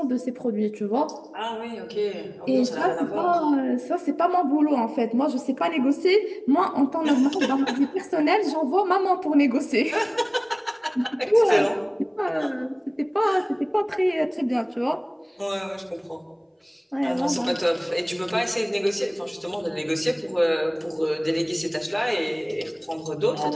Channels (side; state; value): both; identical; correlation 1.00